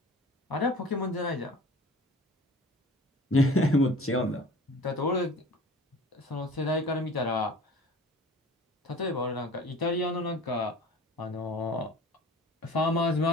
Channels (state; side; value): normal; both; correlation 0.44